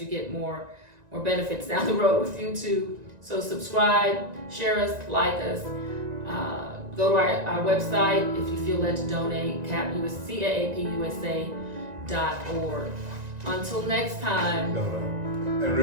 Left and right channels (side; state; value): left; late; 1.9 ms